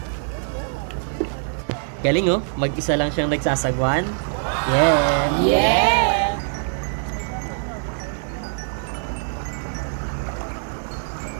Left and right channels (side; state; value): left; silent; digital silence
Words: Galing oh, mag-isa lang siyang nagsasagwan. Yeah! Yeah!